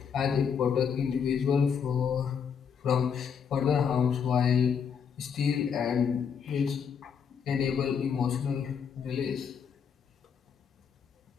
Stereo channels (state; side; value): quieter; right; 7.0 dB